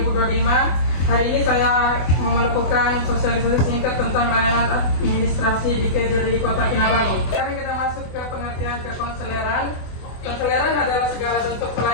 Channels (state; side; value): late; right; 24 ms